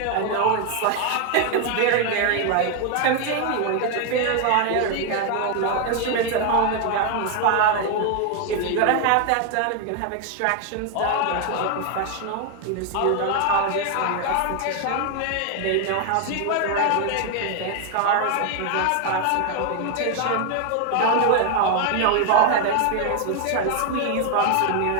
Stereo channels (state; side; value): different; both; correlation 0.01